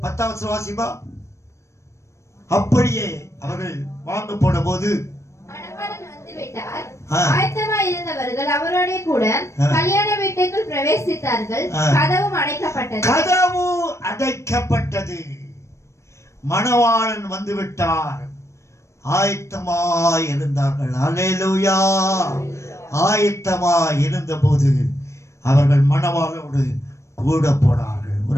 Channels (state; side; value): late; right; 0.14 ms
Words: வாசிப்பா. அப்படியே அவர்கள் வாங்க போன போது இருந்தவர்கள் அவரோட கூட கல்யாண வீட்டுக்குள் பிரவேசித்தார்கள். கதவும் அடைக்கப்பட்டது. கதவு அடைக்கப்பட்டது. மணவாளன் வந்து விட்டார். ஆயத்தமாய் இருந்தார்கள். அல்லேலூயா. ஆயத்தமாய் இருந்தபோது அவர்கள் மணவாளோடு கூட போனார்கள்.